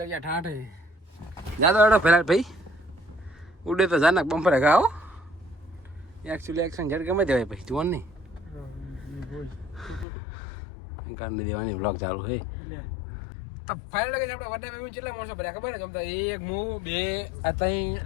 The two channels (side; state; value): right; drops out; at 10.1 s